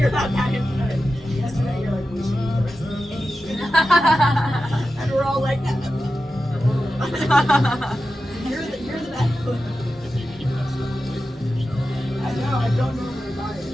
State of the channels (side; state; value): both; normal; correlation 0.92